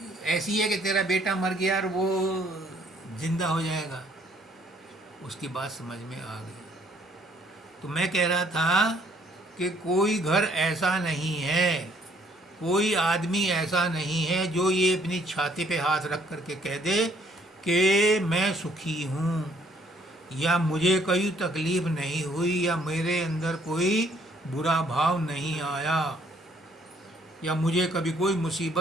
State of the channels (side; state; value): both; normal; correlation 0.63